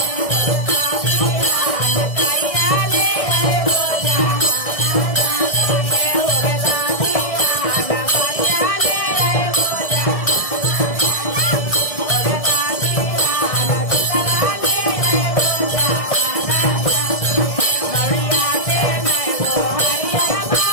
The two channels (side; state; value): right; late; 1.6 ms